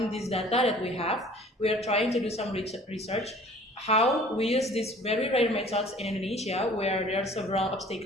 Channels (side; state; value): both; normal; correlation 0.49